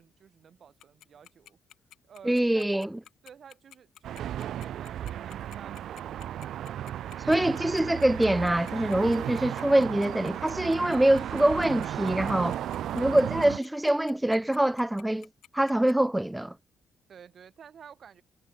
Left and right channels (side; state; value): both; normal; correlation 0.97